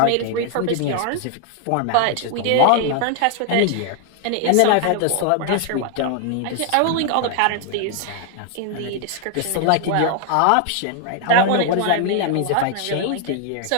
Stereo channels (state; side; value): different; both; correlation 0.00